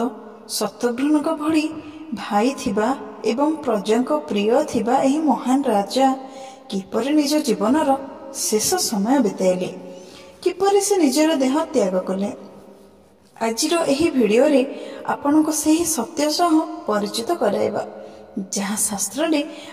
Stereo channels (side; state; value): both; identical; correlation 1.00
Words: शत्रुघ्न भली भाई थिबा एवं प्रजा प्रिय थिबा एही महान राजा किपरि निज जीवनर शेष समय बिताइले, किपरि से निजर देह त्याग कले। आजिर एही भिडियो रे आपन को सही सत्य सह परिचित कराइबा जहाँ शास्त्र रे